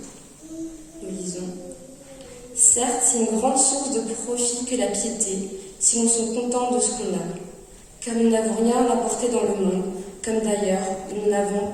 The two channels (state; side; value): identical; both; correlation 1.00